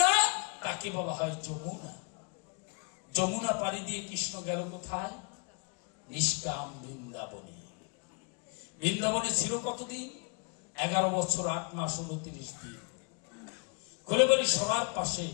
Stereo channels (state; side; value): quieter; right; 37.0 dB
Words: তাকে বলা হয় যমুনা। যমুনা পাড়ি দিয়ে কৃষ্ণ গেল কোথায়? নিষ্কাম বৃন্দাবনে। বৃন্দাবনে ছিল কতদিন? 11 বছর 8 মাস 29 দিন। খুলে বলি, সবার পাশে